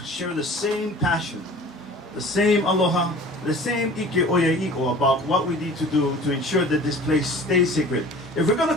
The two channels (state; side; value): normal; both; correlation 0.44